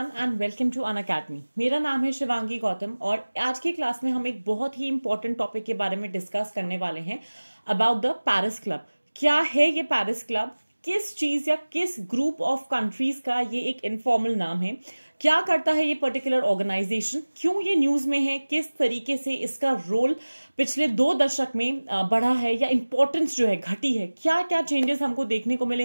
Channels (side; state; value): both; inverted; correlation -1.00